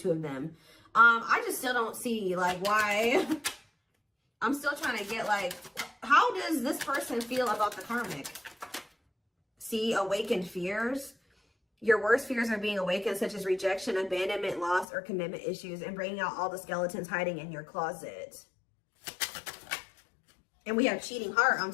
of them. I just still don't see like why. I'm still trying to get like, how does this person feel about the karmic? See, awakened fears. Your worst fears are being awakened, such as rejection, abandonment, loss, or commitment issues, and bringing out all the skeletons hiding in your closet. And we have cheating heart. I'm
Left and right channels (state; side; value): drops out; right; at 14.9 s